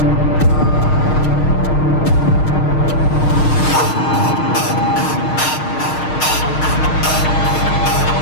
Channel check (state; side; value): late; right; 6.5 ms